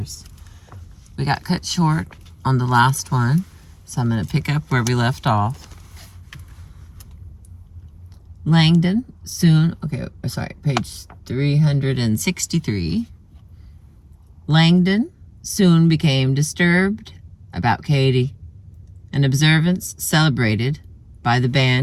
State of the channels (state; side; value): identical; both; correlation 1.00